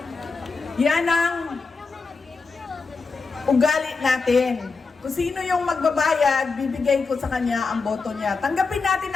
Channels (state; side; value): quieter; right; 4.4 dB